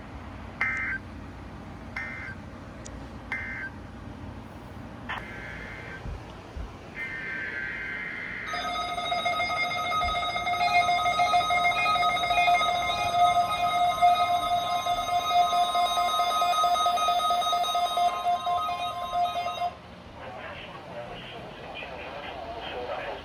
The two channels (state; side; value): identical; both; correlation 1.00